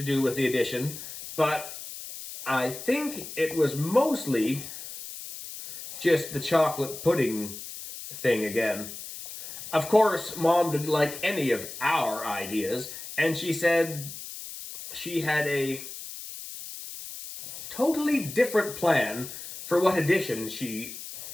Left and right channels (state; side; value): noise; left; hiss, 11 dB below the sound